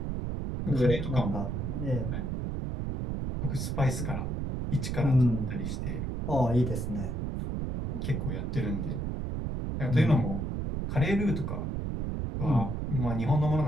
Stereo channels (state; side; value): noise; right; rumble, 2 dB below the sound